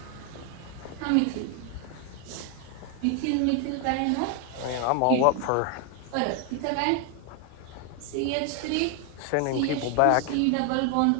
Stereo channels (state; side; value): different; both; correlation 0.00